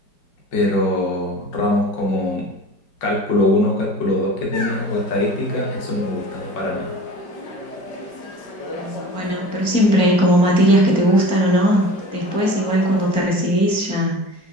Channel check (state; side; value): late; right; 4.5 ms